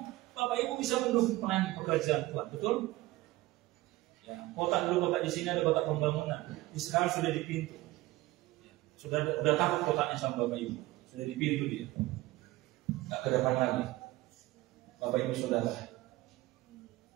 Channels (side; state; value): left; quieter; 18.6 dB